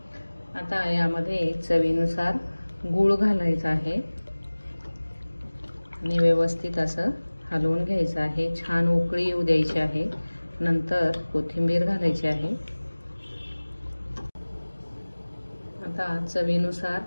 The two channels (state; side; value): inverted; both; correlation -1.00